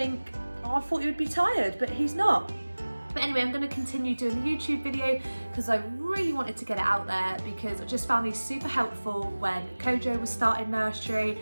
I thought he would be tired, but he's not. But anyway, I'm going to continue doing the YouTube video because I really wanted to get it out there because I just found these super helpful when Kojo was starting nursery.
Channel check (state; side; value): inverted; both; correlation -1.00